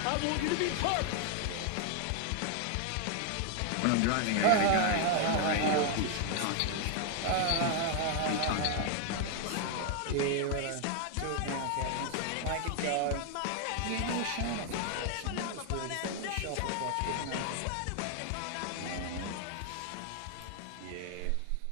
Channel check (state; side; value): different; both; correlation 0.00